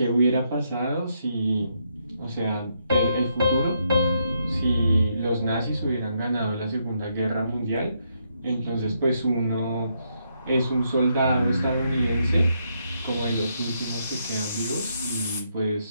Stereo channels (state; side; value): inverted; both; correlation -0.77